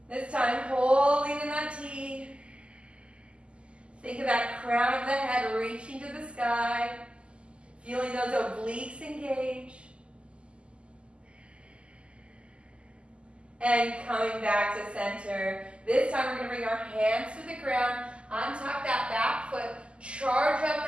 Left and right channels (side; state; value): left; late; 0.053 ms